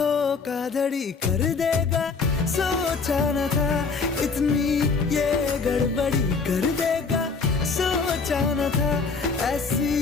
कर देगा, सोचा न था इतनी ये गड़बड़ी कर देगा, सोचा न था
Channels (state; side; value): quieter; right; 4.7 dB